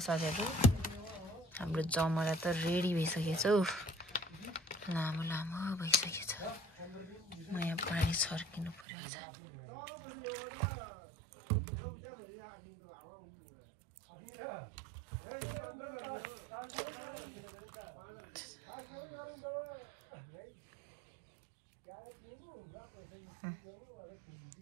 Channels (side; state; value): left; drops out; at 8.8 s